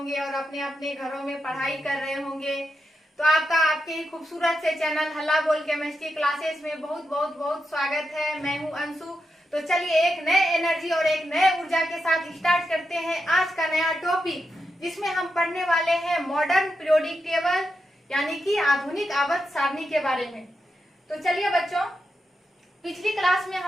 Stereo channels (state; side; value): normal; both; correlation 0.86